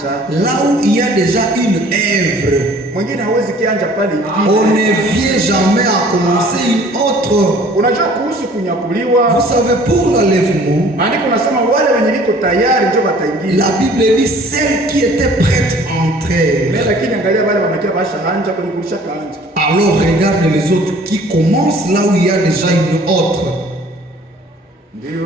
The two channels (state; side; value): normal; both; correlation 0.52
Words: là où il y a déjà une œuvre, mwingine hawezi kianja pale ingine. on ne vient jamais à commencer une autre. Unajua kuhusu kunyakuliwa, Vous savez, pour l'enlèvement, maandiko nasema wale wenye liko tayari ndio wataingia. la Bible dit celles qui étaient prêtes entrèrent. Mais lakini angalia wale wanakia bashaanja kwenye kulisha kaanja. Alors regarde les autres qui commencent là où il y a déjà une autre.